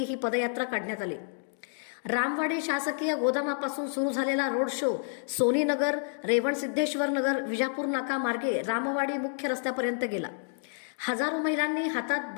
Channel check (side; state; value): right; silent; digital silence